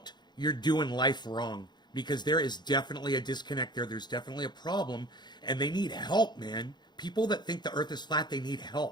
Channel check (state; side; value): late; right; 0.21 ms